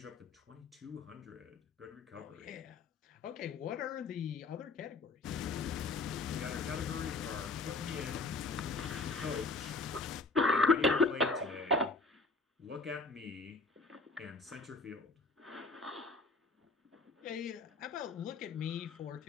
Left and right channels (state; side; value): quieter; right; 3.6 dB